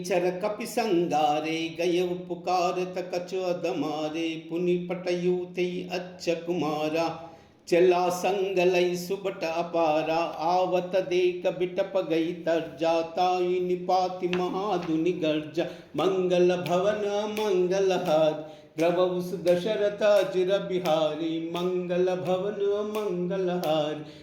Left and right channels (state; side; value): identical; both; correlation 1.00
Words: चर कपि संगारे, गयव पुकारत कछु अदमारे। पुनि पटयु तई अच्छ कुमारा, चला संग लई सुबट अपारा। आवत देख बिटप गई तरजा, ताई निपाति महाधुनि गर्जा। मंगल भवन मंगलहारी, द्रवहु दशरथ अजिर बिहारी। मंगल भवन मंगलहारी,